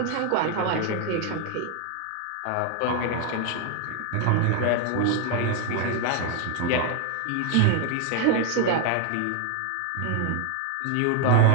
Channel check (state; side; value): different; both; correlation 0.00